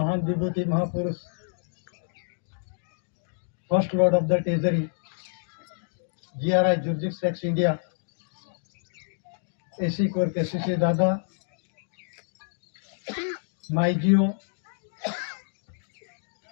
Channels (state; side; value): silent; right; digital silence